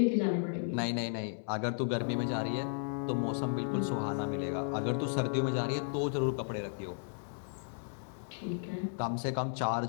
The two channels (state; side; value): silent; right; digital silence